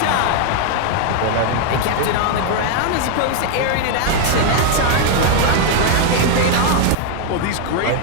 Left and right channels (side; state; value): both; different; correlation 0.00